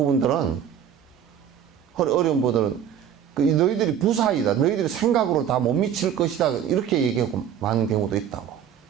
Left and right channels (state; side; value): quieter; left; 9.1 dB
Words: 그 너희들이 부사이다. 너희들이 생각으로 다 못 미칠 것이다. 이렇게 얘기하고 많은 경우도 있다고.